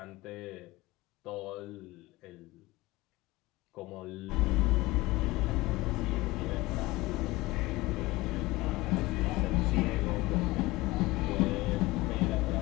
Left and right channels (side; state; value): right; quieter; 20.3 dB